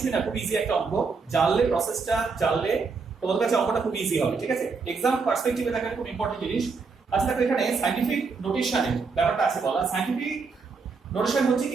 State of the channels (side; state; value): left; quieter; 4.8 dB